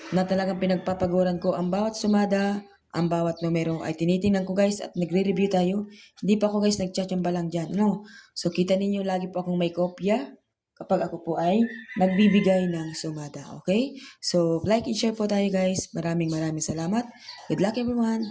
na talagang pinagpapaguran ko ang bawat sumada, ang bawat numero ay tinitingnan ko guys at nagre-review tayo. Hindi pa ako guys nagchatsamba lang dyan. No? So, kita ninyo lagi po akong may kopya kapag ako po ay nagbibigay ng sumada. Okay? So, like and share po tayo guys. Maraming salamat. Good luck everyone.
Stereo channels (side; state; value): both; identical; correlation 1.00